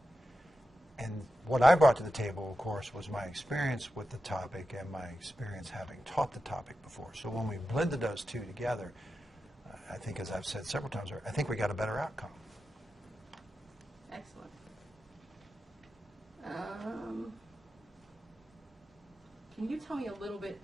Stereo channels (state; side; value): normal; both; correlation 0.91